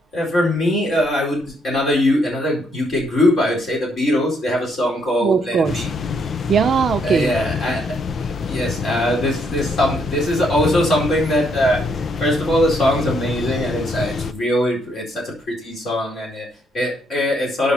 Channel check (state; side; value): normal; both; correlation 0.72